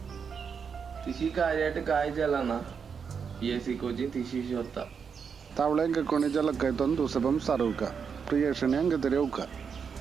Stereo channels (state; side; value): quieter; left; 6.4 dB